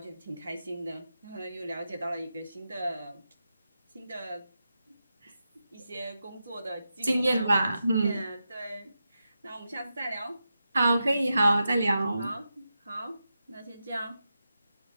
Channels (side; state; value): both; inverted; correlation -0.89